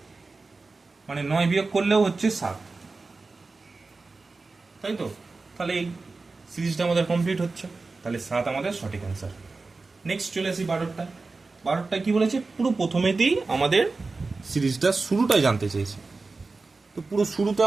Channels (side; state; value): left; quieter; 3.8 dB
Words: মানে 9 বিয়োগ করলেও হচ্ছে 7, তাই তো? তাহলে এই সিরিজটা আমাদের কমপ্লিট হচ্ছে। তাহলে 7 আমাদের সঠিক অ্যান্সার। নেক্সট চলে আসি 12টা। 12টা কি বলেছে? পুরো প্রথমেতেই আমাদের সিরিজটা শুরুটাই জানতে চেয়েছে। তো পুরো শুরুতে